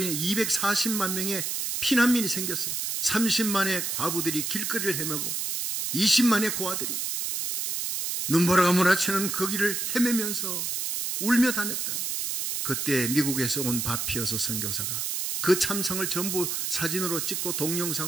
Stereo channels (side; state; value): right; noise; hiss, 2 dB below the sound